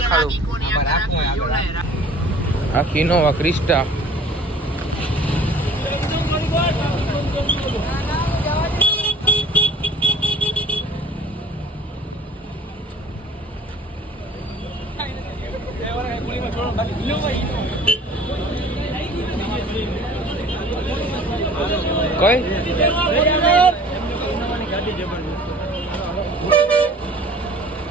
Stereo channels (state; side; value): normal; both; correlation 0.48